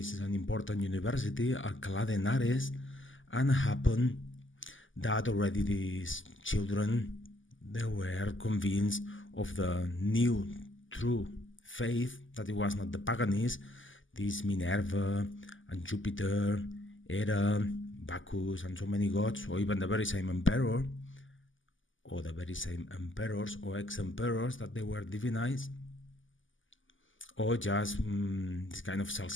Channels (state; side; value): late; right; 0.57 ms